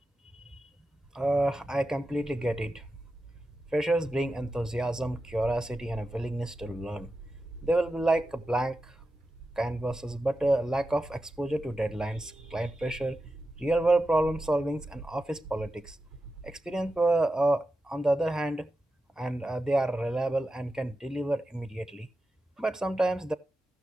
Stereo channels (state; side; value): normal; both; correlation 0.91